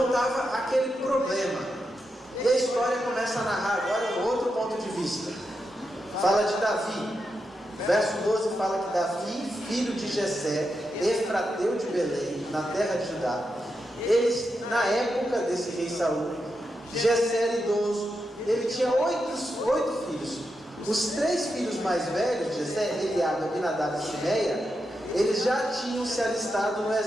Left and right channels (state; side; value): normal; both; correlation 0.86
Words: estava aquele problema. E a história começa a narrar agora um outro ponto de vista. Fala de Davi. Verso 12 fala que Davi, filho de Jessé, efrateu de Belém, na terra de Judá. Eles, na época desse rei Saul, Jessé era idoso. Ele tinha 8 filhos. Os 3 filhos mais velhos de Jessé, Eliabe, Abinadab e Simeia, eles já tinham se alistado no